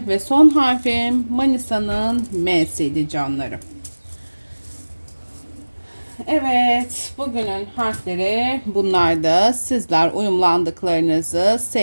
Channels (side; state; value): both; inverted; correlation -1.00